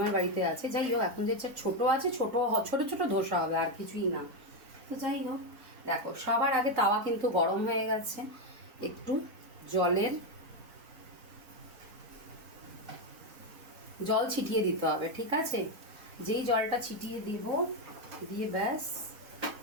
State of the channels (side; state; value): left; late; 4.2 ms